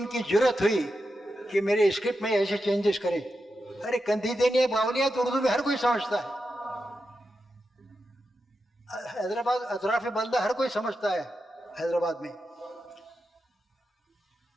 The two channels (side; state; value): both; normal; correlation 0.88